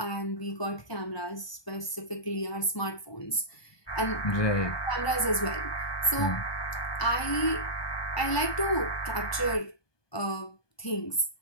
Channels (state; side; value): late; right; 1.2 ms